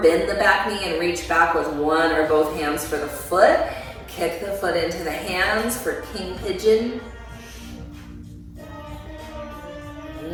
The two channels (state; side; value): identical; both; correlation 1.00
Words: bend the back knee and reach back with one or both hands for the foot. Kick the foot into the hands for king pigeon.